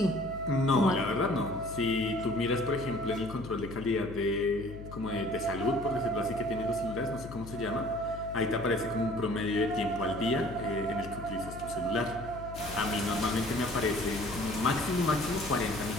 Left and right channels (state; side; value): noise; left; hum, 12 dB below the sound